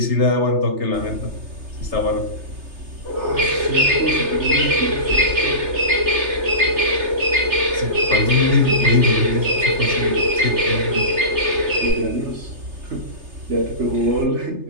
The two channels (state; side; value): late; left; 3.3 ms